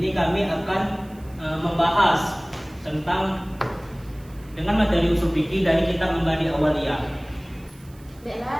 kami akan membahas tentang dengan materi usul fikih dari kitab Mabadi Awaliyah. Bella,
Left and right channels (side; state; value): right; noise; hiss, 27 dB below the sound